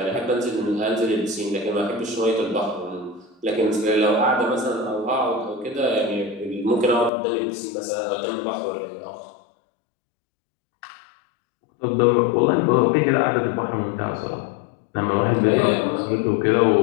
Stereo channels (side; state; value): right; drops out; at 7.1 s